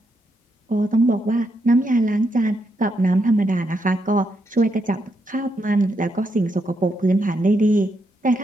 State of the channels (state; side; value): normal; both; correlation 0.80